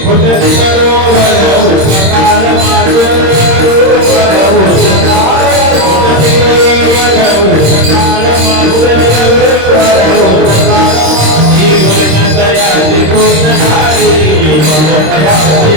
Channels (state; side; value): late; left; 26 ms